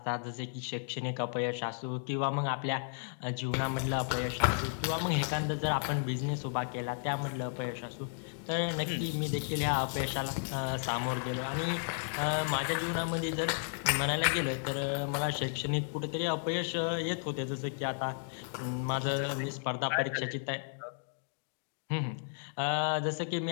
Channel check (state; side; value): silent; right; digital silence